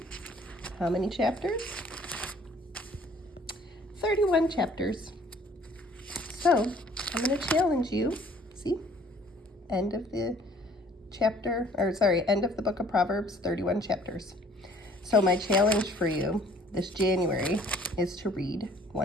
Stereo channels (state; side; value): normal; both; correlation 0.56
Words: how many chapters? 31 chapters. So I'm going to challenge you. See, end of the book of Proverbs, 31 chapters. So my challenge for you this January is to read